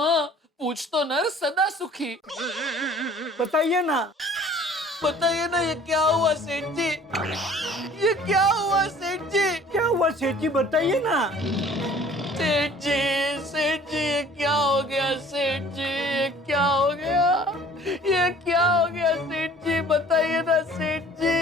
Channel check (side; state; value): both; normal; correlation 0.51